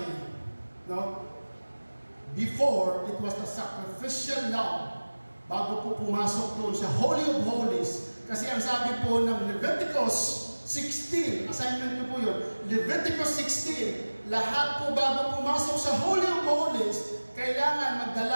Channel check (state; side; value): inverted; both; correlation -1.00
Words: no, before, it was the sacrificial lamb bago po pumasok doon sa Holy of Holies. Kasi ang sabi po ng Leviticus 16, assignment niyo po yun, Leviticus 16, lahat po bago pumasok sa Holy of Holies, kailangan